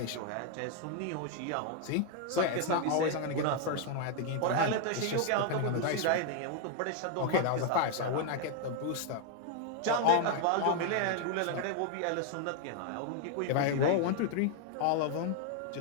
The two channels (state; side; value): different; both; correlation 0.00